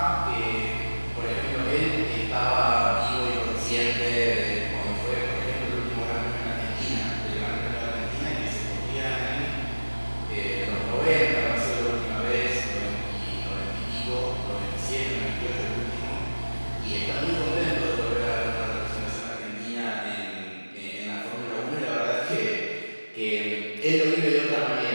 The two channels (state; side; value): inverted; both; correlation -1.00